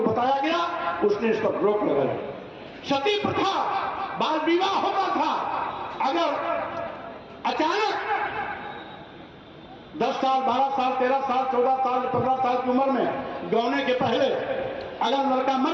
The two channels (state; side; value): identical; both; correlation 1.00